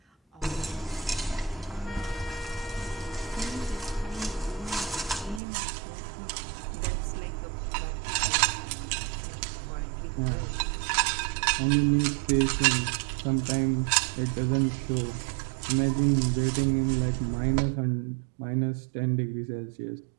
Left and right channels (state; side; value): drops out; left; at 5.4 s